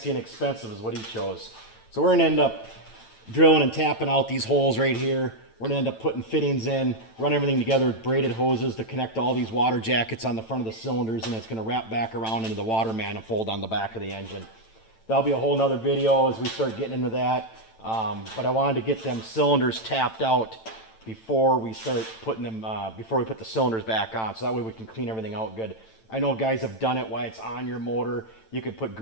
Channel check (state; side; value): late; right; 9.0 ms